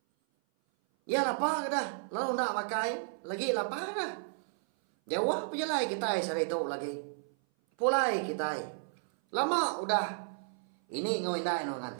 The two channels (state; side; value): silent; left; 56 dB below the other